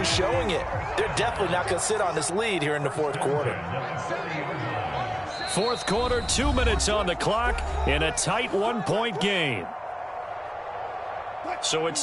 showing it. They're definitely not going to sit on this lead here in the fourth quarter. Fourth quarter, 2 minutes on the clock in a tight 1-point game. So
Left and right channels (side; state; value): both; identical; correlation 1.00